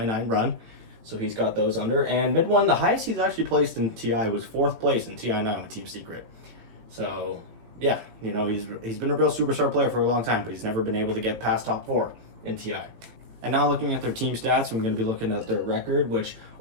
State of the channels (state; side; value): late; left; 18 ms